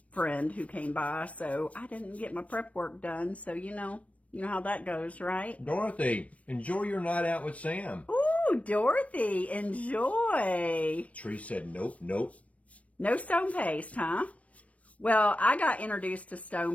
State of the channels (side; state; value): right; late; 0.065 ms